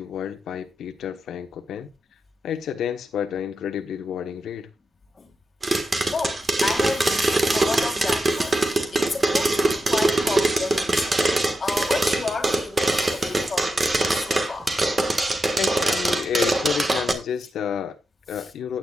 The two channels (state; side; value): normal; both; correlation 0.88